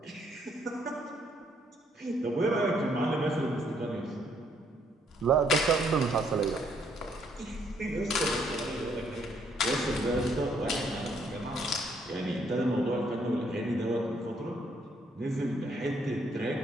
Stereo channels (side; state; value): both; normal; correlation 0.69